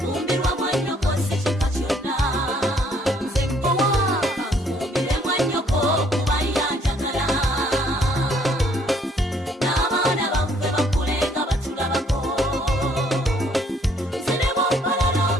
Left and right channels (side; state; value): both; normal; correlation 0.64